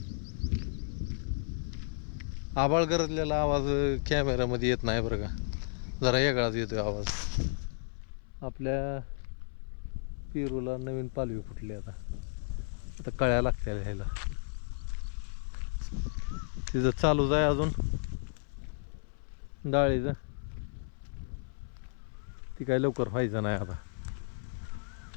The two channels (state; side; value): silent; right; 56 dB below the other